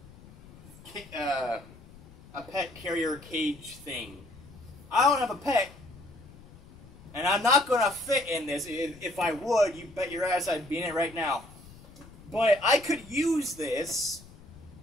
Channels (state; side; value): noise; left; rumble, 21 dB below the sound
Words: a pet carrier cage thing. I don't have a pet, and I'm not gonna fit in this. If I would, you bet your ass I'd be in it right now. But I could use this